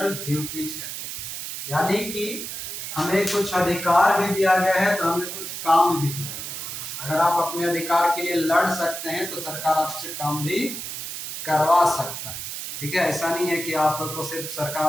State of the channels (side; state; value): right; noise; hiss, 7 dB below the sound